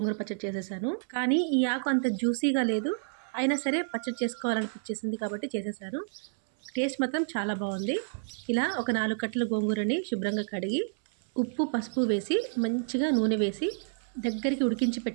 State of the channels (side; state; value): left; silent; 58 dB below the other